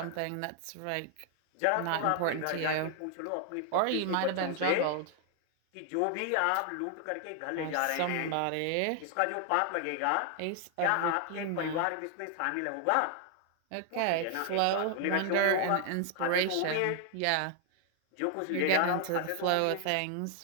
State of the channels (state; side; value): different; both; correlation 0.00